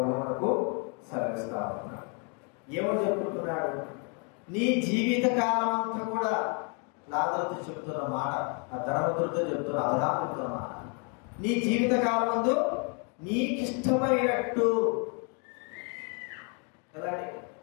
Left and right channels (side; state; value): right; quieter; 37.2 dB